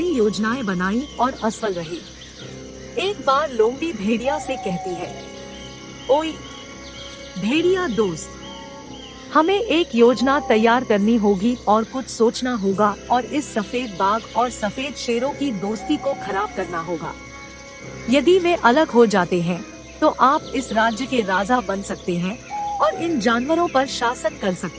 योजनाएं बनाई और असफल रही। एक बार लोमड़ी भेड़िया से कहती है, ओए भेड़िया दोस्त, हमें एक योजना तैयार करनी होगी और कुछ सोचना होगा और इस सफेद बाघ और सफेद शेरों की दोस्ती को खराब करना होगा। यदि वे अलग हो जाते हैं तो आप इस राज्य के राजा बन सकते हैं और इन जानवरों पर शासन कर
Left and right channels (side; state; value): both; identical; correlation 1.00